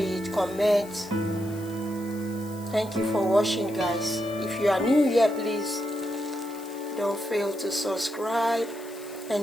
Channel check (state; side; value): noise; left; hiss, 20 dB below the sound